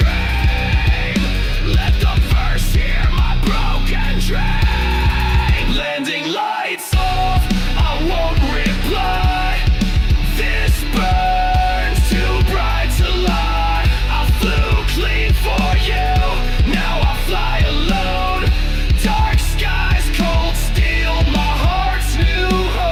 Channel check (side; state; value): both; identical; correlation 1.00